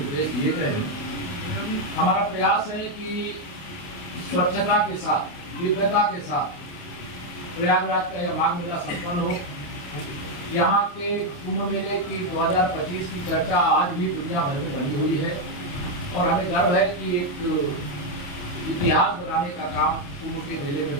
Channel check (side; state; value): right; late; 28 ms